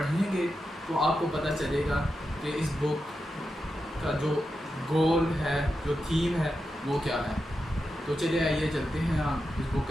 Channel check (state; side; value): normal; both; correlation 0.89